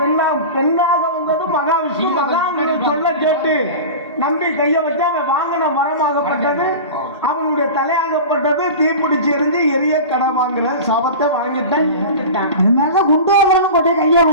பெண்ணாக வந்தது மகாவிஷ்ணு. மகாவிஷ்ணு சொல்ல கேட்டு நம்பி கைய வச்சா அவன் வாங்கின மரமாகப்பட்டது, அவனுடைய தலையாகப்பட்டது தீப்பிடிச்சு எரிஞ்சு எரிய கடை வாங்குற சாபத்தை வாங்கிட்டேன், இறந்துட்டான். அதனாலதான் குண்டோதரனும் கொண்டு கைய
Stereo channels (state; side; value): inverted; both; correlation -0.31